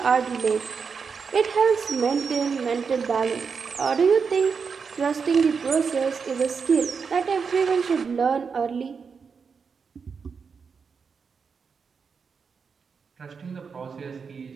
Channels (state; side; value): quieter; left; 5.7 dB